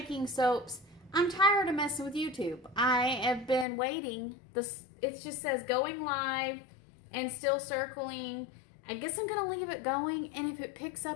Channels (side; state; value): right; drops out; at 3.7 s